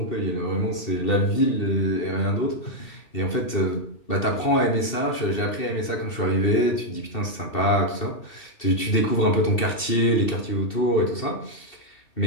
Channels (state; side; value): late; right; 2.7 ms